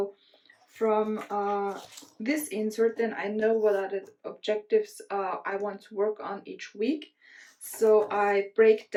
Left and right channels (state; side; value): identical; both; correlation 1.00